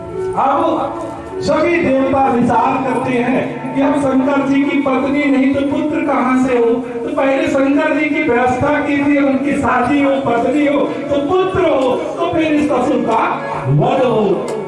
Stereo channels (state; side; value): identical; both; correlation 1.00